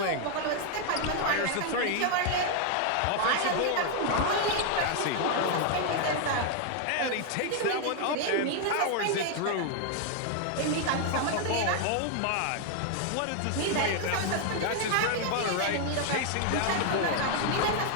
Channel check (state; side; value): different; both; correlation 0.00